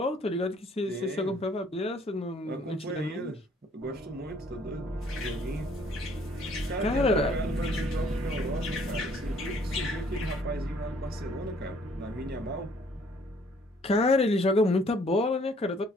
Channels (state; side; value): normal; both; correlation 0.62